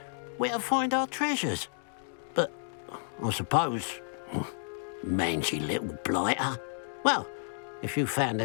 where to find our treasures. But I suppose, mangy little blighter. Well, if you found the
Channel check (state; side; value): silent; right; digital silence